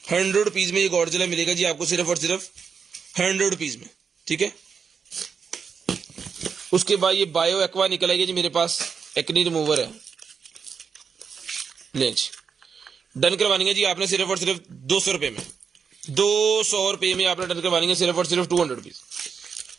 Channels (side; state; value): left; quieter; 6.2 dB